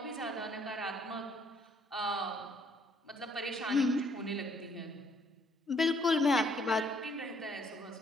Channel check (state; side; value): normal; both; correlation 0.66